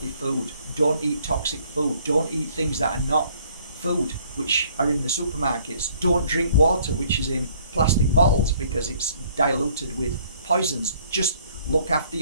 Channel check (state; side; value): inverted; both; correlation -0.61